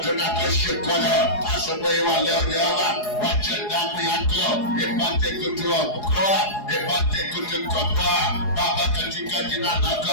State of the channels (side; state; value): right; late; 4.8 ms